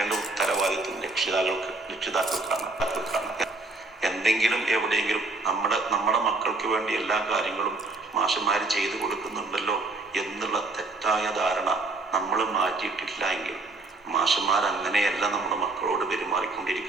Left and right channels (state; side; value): quieter; left; 3.3 dB